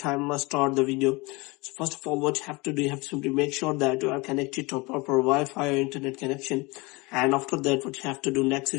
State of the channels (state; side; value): quieter; right; 25.2 dB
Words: let's start the video. So first of all, what you have to do, you have to simply make sure that you are connected to a proper Wi-Fi or internet connection. And after that, what you have to do next